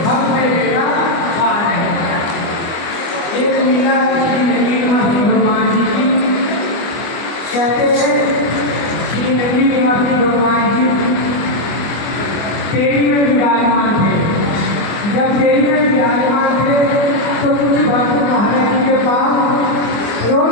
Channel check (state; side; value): late; right; 25 ms